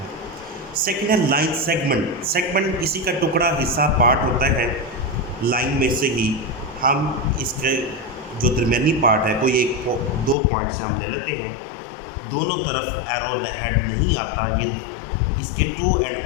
सेकेंड है लाइन सेगमेंट। सेगमेंट इसी का टुकड़ा, हिस्सा, पार्ट होता है। लाइन में से ही हम इसके जो दरमियानी पार्ट है, कोई एक दो पॉइंट से हम ले लेते हैं, दोनों तरफ एरो हेड नहीं आता, ये इसके टू एंड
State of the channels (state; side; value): drops out; right; at 10.4 s